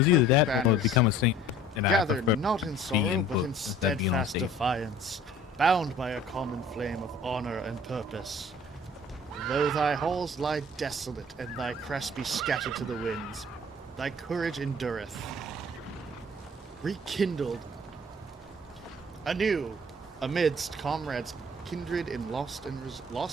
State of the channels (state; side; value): normal; both; correlation 0.50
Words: either that or banners, become a saint, and I gather prefer not in to be sorrow, in but in books instead of being on steadfast stage. defiance, bound by a common flame of honor and purpose. Though thy halls lie desolate, and thy crest be scattered to the winds, thy courage endureth. Rekindled anew amidst comrades kindred in loss